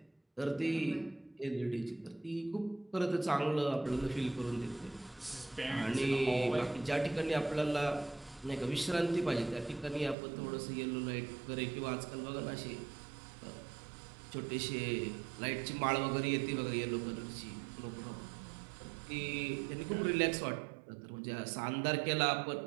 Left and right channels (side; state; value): left; drops out; at 10.2 s